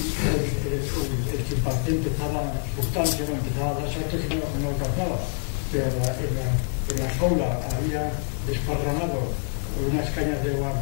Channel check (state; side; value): silent; right; digital silence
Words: el chimpancé empezaba a dar saltos y no alcanzaba, pero en la jaula había desparramado unas cañas de